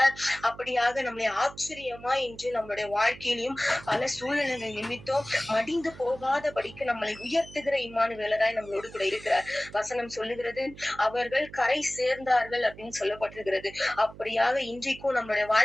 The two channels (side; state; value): right; noise; hum, 18 dB below the sound